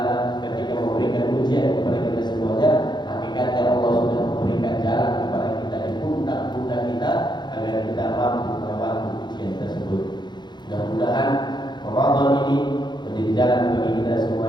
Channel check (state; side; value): late; right; 0.21 ms